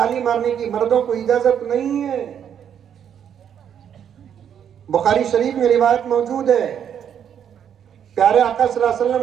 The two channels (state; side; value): quieter; left; 8.8 dB